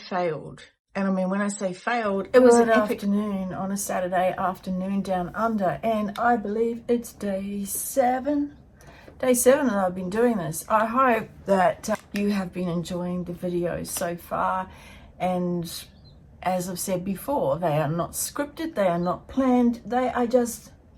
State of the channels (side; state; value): both; identical; correlation 1.00